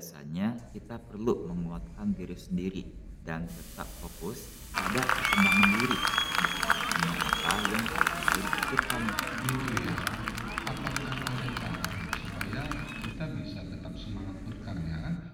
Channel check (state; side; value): identical; both; correlation 1.00